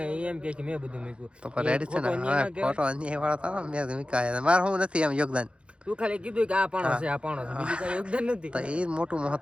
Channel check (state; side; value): late; left; 0.058 ms